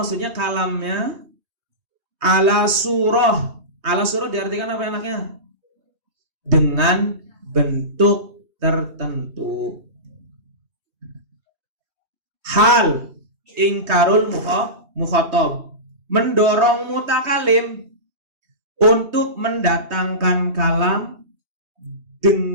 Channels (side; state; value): left; late; 3.2 ms